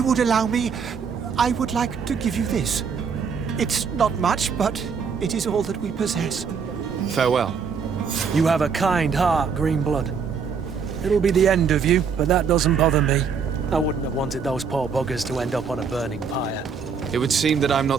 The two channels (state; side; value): quieter; left; 6.0 dB